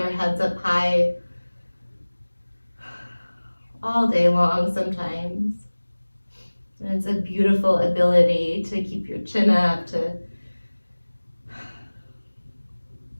heads up high all day long sometimes. And it's a beautiful ability to keep your chin up, to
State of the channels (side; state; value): both; inverted; correlation -1.00